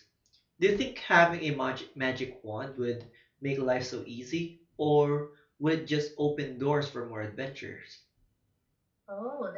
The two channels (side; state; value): both; identical; correlation 1.00